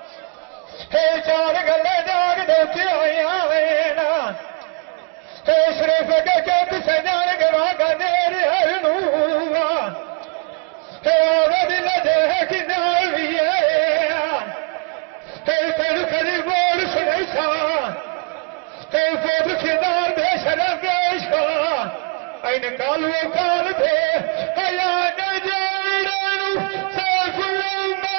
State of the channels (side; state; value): left; quieter; 34.5 dB